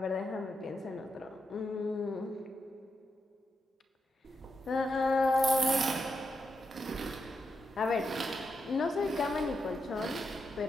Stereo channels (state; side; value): normal; both; correlation 0.84